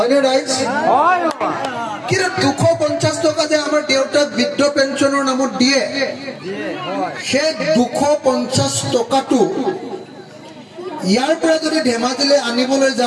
ৰাইজ হয় কিন্তু 250 টকা যে আমাৰ দেউতাক বৃদ্ধ পেঞ্চনৰ নামত দিয়ে সেই 250 টকাটো ইয়াৰ পৰা যদি ধেমাজিলৈ আনিবলৈ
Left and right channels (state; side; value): identical; both; correlation 1.00